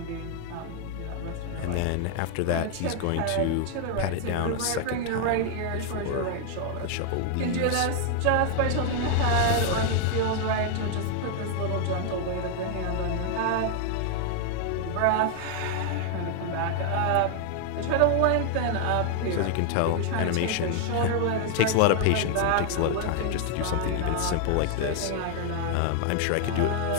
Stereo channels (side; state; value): both; different; correlation 0.00